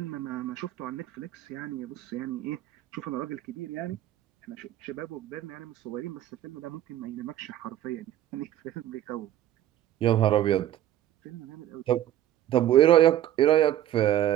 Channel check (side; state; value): left; quieter; 12.3 dB